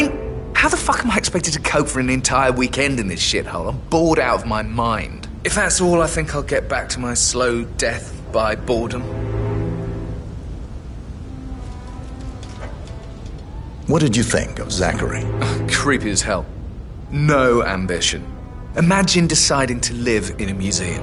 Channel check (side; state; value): both; identical; correlation 1.00